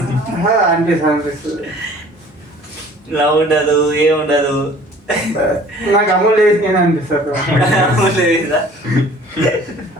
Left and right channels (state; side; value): normal; both; correlation 0.50